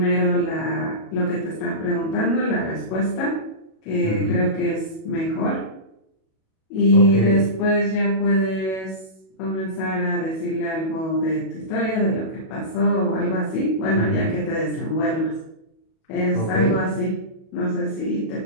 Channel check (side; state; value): right; late; 37 ms